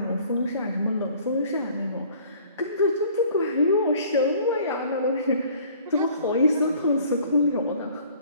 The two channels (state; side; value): inverted; both; correlation -0.53